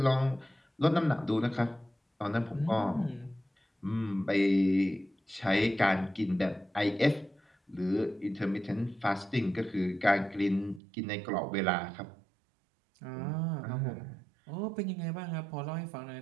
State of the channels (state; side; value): drops out; left; at 10.8 s